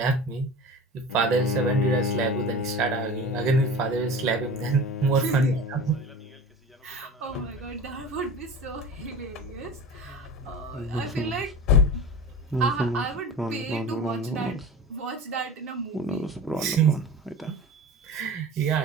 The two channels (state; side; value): normal; both; correlation 0.34